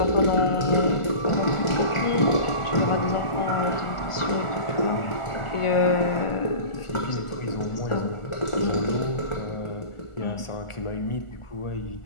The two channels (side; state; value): right; late; 1.4 ms